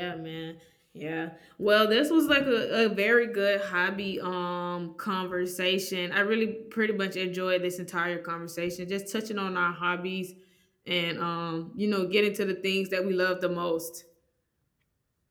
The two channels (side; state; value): both; identical; correlation 1.00